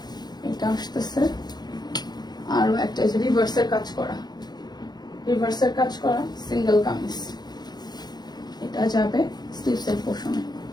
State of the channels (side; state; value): right; late; 0.20 ms